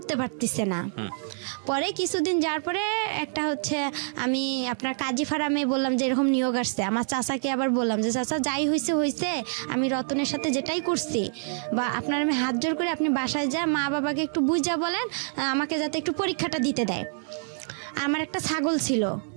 পারতেছে না। পরে কিছুদিন যাওয়ার পরে একটা আমি আপনার কাজী ফার্মে বললাম যে এরকম নিয়োগ আসছে, আমার চাচাকে আবার বললাম যে চাচা যাই হয়েছে, আমি রতনের সাথে যেটাই করছি, বা আপনার আমি হাত জোর করে আপনি বাসায় যা মা বাবাকে একটু বুঝা বলেন আমাকে যাতে একটু পরীক্ষাটা দিতে দেয়। আমার একটা ছাগল ছিল,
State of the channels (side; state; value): left; silent; 58 dB below the other